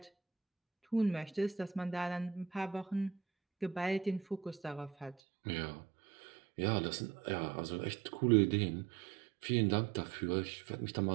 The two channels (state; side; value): drops out; left; at 5.2 s